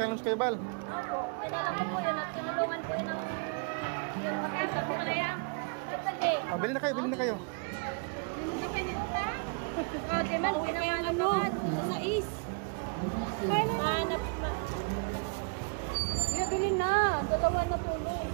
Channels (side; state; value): left; quieter; 35.7 dB